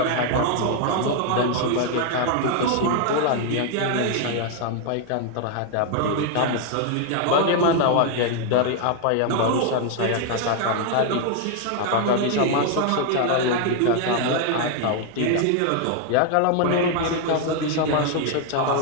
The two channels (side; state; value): both; different; correlation 0.00